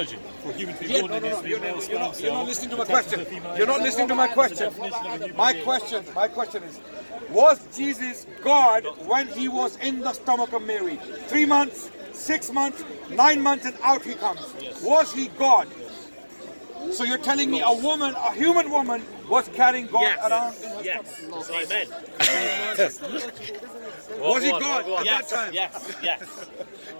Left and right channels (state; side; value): inverted; both; correlation -1.00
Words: For a human to be born in his female You're not sperm listening to cell, my question. You're not listening to my question. My question is, was Jesus God when he was in the stomach of Mary? 3 months, 6 months, 9 months, and out he comes. Was he God? So you're telling me a human woman was carrying God around in her Yes. Amen. Was he God at that time? Yes.